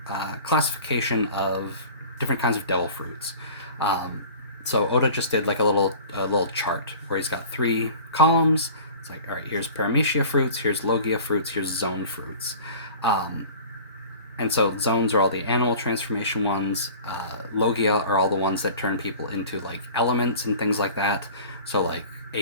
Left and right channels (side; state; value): both; inverted; correlation -0.42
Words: classification of different kinds of devil fruits. Um, so Oda just did like a little chart where he's got 3 columns. It's like, all right, here's Paramecia fruits, here's Logia fruits, here's zone fruits. Um, and so zones are all the animal transformation ones. Logia are all the ones that turn people into like elements and things like that. So like